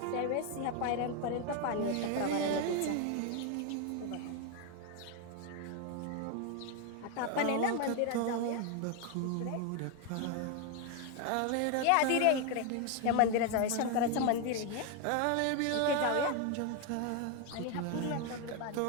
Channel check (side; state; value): both; different; correlation 0.01